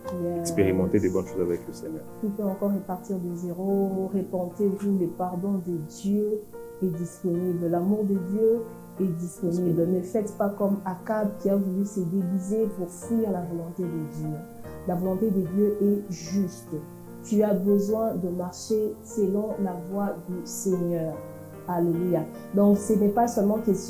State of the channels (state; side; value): identical; both; correlation 1.00